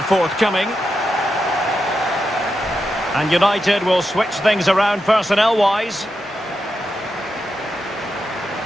forthcoming. And United will switch things around personnel-wise.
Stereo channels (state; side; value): normal; both; correlation 0.87